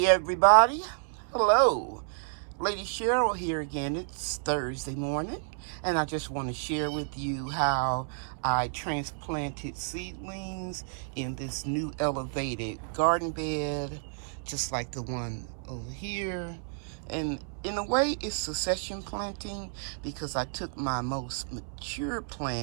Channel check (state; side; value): silent; left; 58 dB below the other